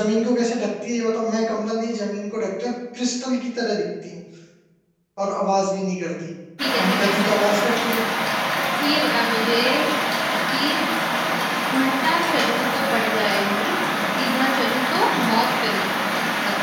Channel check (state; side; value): identical; both; correlation 1.00